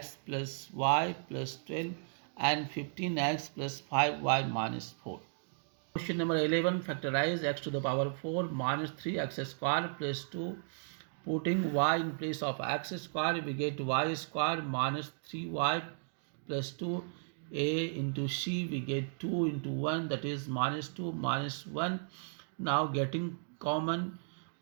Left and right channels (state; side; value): silent; left; digital silence